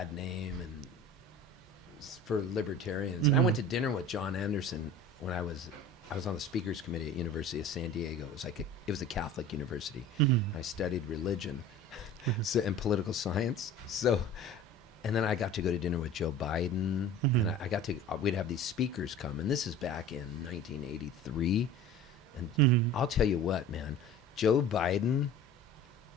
name and for libertarians. And I went to dinner with John Anderson when I was on the speakers committee at University of San Diego. It was a Catholic university. I studied religion and political science. So, and then I got to go to dinner with Joe Biden, and we'd have these speakers come, and this is back in 1983. And I'll tell you what, man, Joe Biden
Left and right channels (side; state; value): both; normal; correlation 0.39